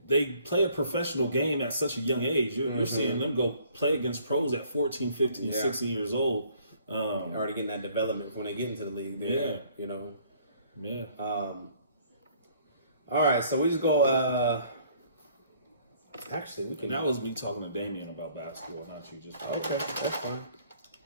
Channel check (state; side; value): inverted; both; correlation -0.60